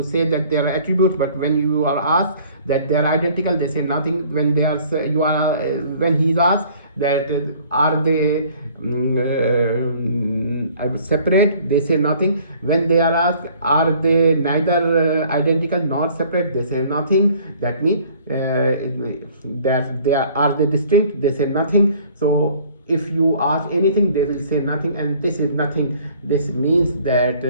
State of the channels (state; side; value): inverted; both; correlation -0.55